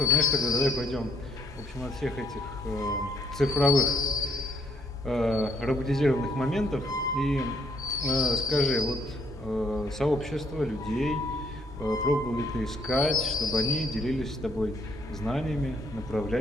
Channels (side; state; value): both; normal; correlation 0.68